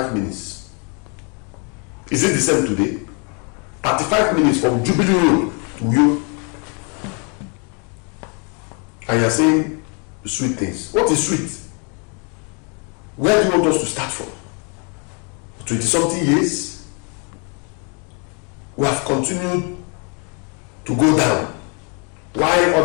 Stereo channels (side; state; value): right; quieter; 36.0 dB